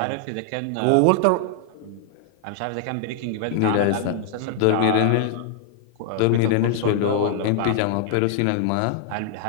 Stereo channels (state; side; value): different; both; correlation -0.01